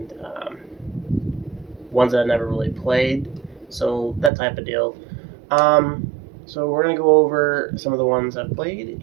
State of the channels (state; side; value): drops out; left; at 4.3 s